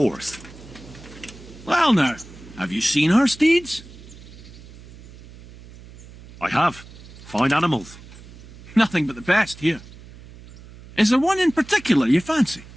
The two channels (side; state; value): right; noise; hum, 19 dB below the sound